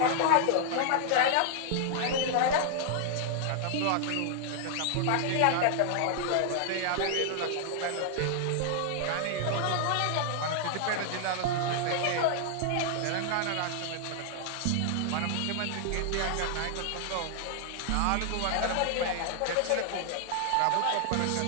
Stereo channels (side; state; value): both; different; correlation -0.01